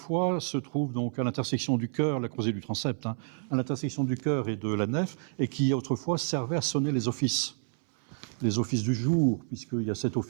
se trouve donc à l'intersection du chœur, la croisée du transept, à l'intersection du chœur et de la nef, et qui autrefois servait à sonner les offices du jour, puisqu'il y a 7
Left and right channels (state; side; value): silent; left; 58 dB below the other